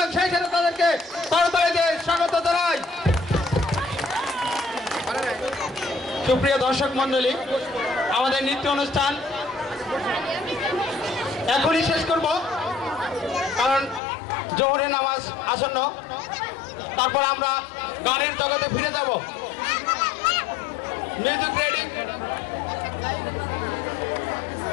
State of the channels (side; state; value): right; drops out; at 14.0 s